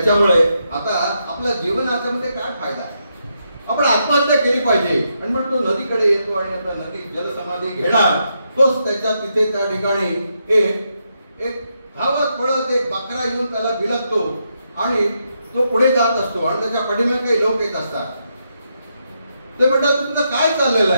आता आपल्या जीवनाच्या मध्ये काय फायदा आहे? आपण आत्महत्या केली पाहिजे आणि मग तो नदीकडे येतो आणि आता नदी जलसमाधी घेणार, तोच त्याच्या तिथे त्या ठिकाणी एक धावत पळत एक बकरा येऊन त्याला बिलगतो आणि तो पुढे जात असतो आणि त्याच्या पाठीमागे काही लोक येत असतात. ते म्हणतात तुमचं काय चाललेलं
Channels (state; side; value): inverted; both; correlation -0.81